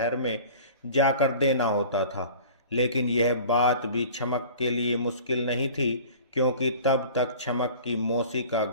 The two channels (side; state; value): both; inverted; correlation -0.43